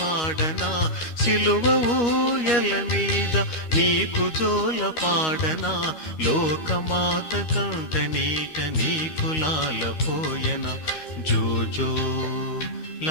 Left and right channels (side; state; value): right; late; 13 ms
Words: సిలువ ఊయల మీద నీకు జోల పాడనా. లోకమాత కంట నీట నీకు లాలపోయన. జోజో